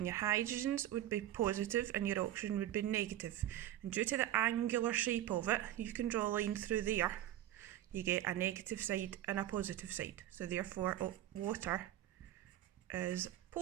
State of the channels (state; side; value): quieter; left; 12.8 dB